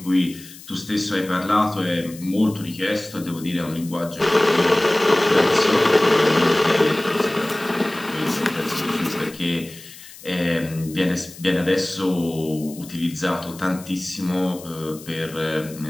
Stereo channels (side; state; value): left; noise; hiss, 18 dB below the sound